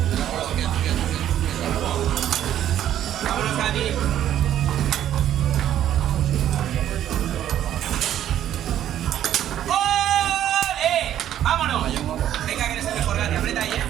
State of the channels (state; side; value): quieter; left; 11.3 dB